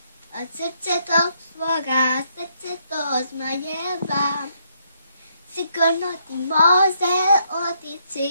od srce tog svoga srce to zmajeva. Sigurno ti može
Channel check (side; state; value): both; inverted; correlation -0.72